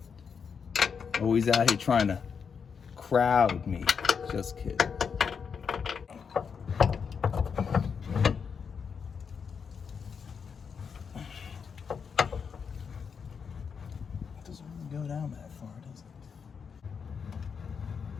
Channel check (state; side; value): quieter; right; 6.3 dB